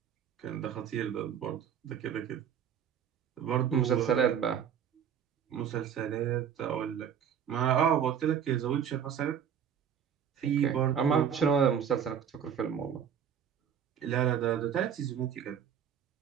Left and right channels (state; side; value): quieter; left; 8.2 dB